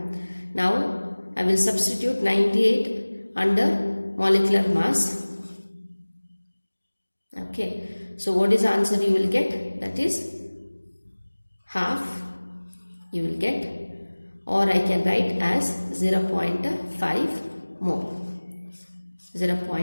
Now I will substitute 98 under molecular mass. Okay. So what is the answer you will get? That is half you will get, or I can write as 0.5 mole.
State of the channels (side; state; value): both; inverted; correlation -1.00